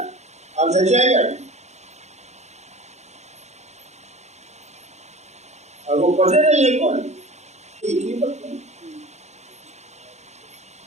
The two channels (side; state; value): left; late; 0.33 ms